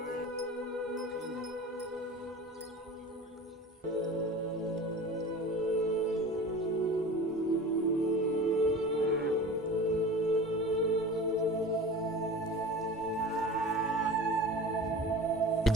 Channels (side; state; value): both; normal; correlation 0.36